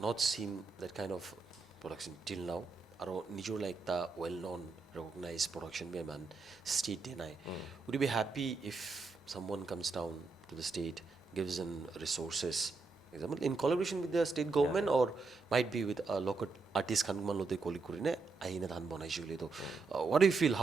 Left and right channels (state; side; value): quieter; left; 4.1 dB